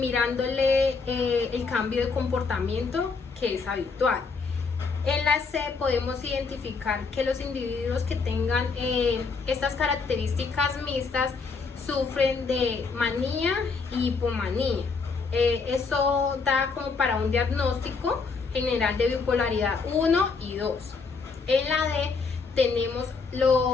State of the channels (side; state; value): right; quieter; 4.7 dB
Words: el cambio de comportamiento que es habitual. En la C podemos identificar que los individuos que tengan estas características mixtas sufren de manía y hipomanía. Eso da como para un diagnóstico general de bipolaridad 1 y 2. En la D tenemos